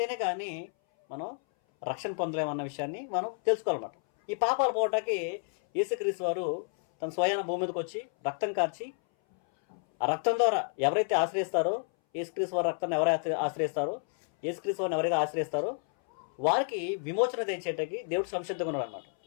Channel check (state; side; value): silent; right; 58 dB below the other